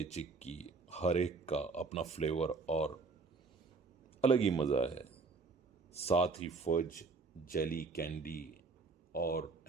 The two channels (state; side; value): quieter; left; 4.3 dB